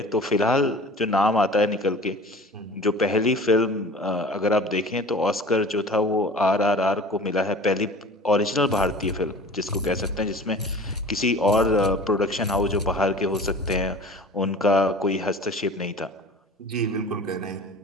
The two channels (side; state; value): both; normal; correlation 0.42